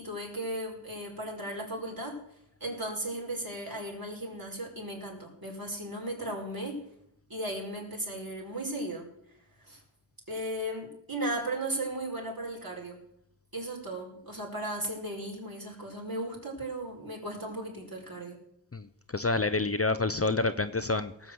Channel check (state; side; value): normal; both; correlation -0.13